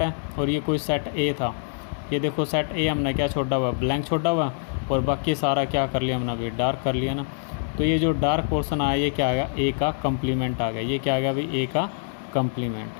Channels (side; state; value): right; silent; digital silence